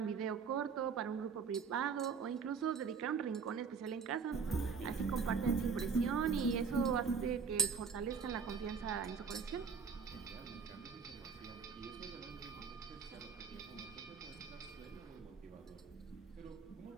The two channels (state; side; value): quieter; left; 5.7 dB